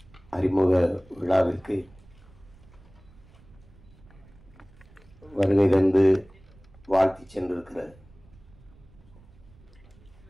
அறிமுக விழாவிற்கு வருகை தந்து வாழ்த்தி சென்றிருக்கிற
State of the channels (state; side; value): noise; right; rumble, 25 dB below the sound